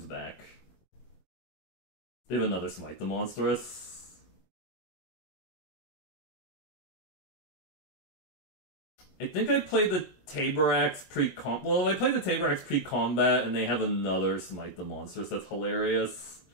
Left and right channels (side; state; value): right; late; 20 ms